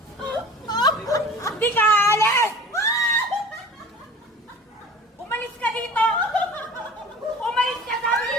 Hindi ka aalis! Umalis ka dito! Umalis ka, sabi!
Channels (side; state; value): both; normal; correlation 0.41